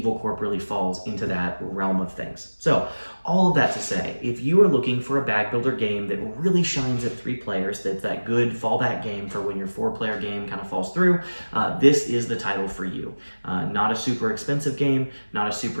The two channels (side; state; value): both; inverted; correlation -1.00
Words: Corp really falls into that realm of things. So all of that to say, if you are looking for a bag builder game that really shines at 3 players, that's that good fallback game for when your 4-player game kind of falls through, this is the title for you. Not a super expensive game, not a